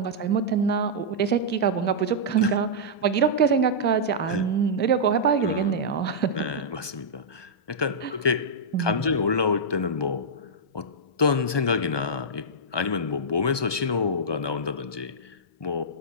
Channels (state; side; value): late; right; 1.2 ms